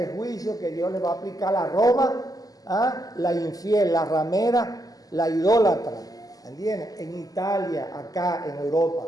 juicio que Dios le va a aplicar a Roma, la infiel, la ramera, la idólatra. ¿Entienden? En Italia, acá en Europa.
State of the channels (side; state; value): right; late; 0.17 ms